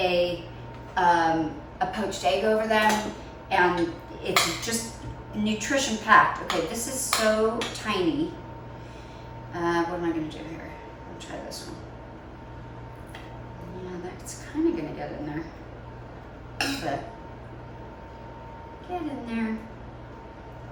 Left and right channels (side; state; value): both; identical; correlation 1.00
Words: poached egg over them, and it's just nutrition packed. Okay, this is so tiny. What am I going to do here? I'll try this one. Yeah, that's kind of going to get in there. But get in there. I'm